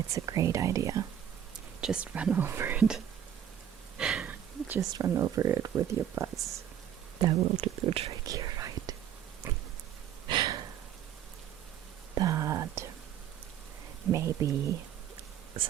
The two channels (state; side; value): quieter; left; 9.9 dB